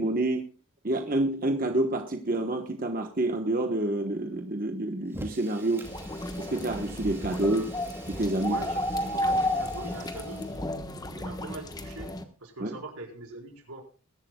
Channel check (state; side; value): normal; both; correlation 0.51